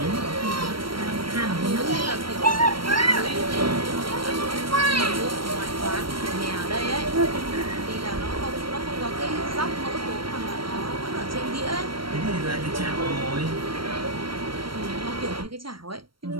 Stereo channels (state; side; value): late; left; 0.74 ms